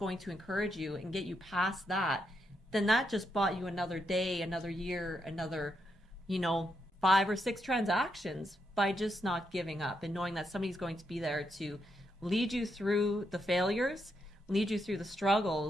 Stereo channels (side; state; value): both; normal; correlation 0.81